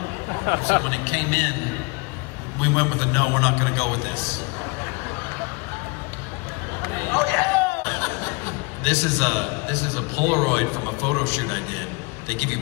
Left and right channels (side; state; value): right; quieter; 28.9 dB